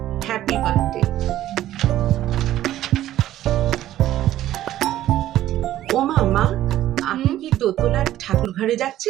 হ্যাপি বার্থডে। ও মা, আপনি কি দোতলার ঠাকুর ঘরে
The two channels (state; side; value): quieter; left; 13.4 dB